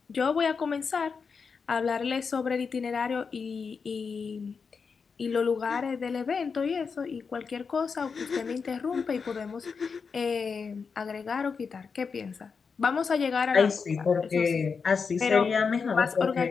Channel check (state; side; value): quieter; right; 5.5 dB